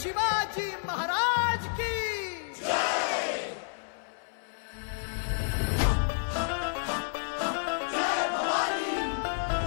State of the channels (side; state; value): right; silent; 58 dB below the other